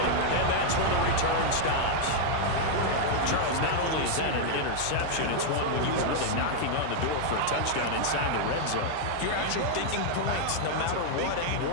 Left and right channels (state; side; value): different; both; correlation 0.00